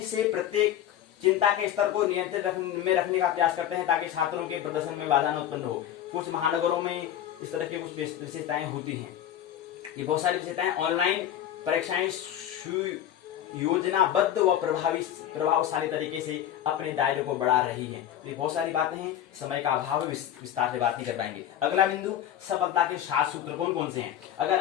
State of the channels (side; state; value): right; quieter; 10.9 dB